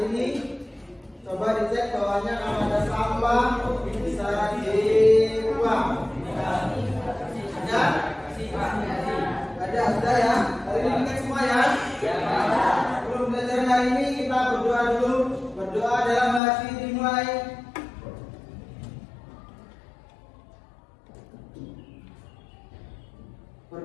ini. Coba dicek bawahnya kalau ada sampah bisa dibuang. Ada? Ada, sudah ya. Hari ini kita semua ya. Sebelum belajar hari ini kita berdoa dulu. Berdoa dalam hati dimulai.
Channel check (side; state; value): right; drops out; at 16.4 s